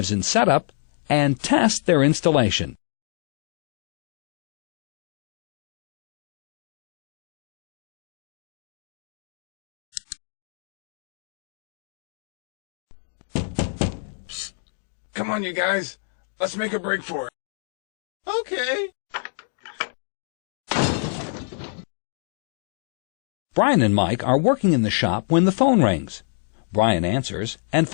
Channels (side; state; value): right; silent; digital silence